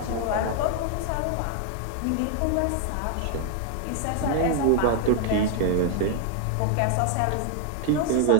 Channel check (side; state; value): both; different; correlation 0.00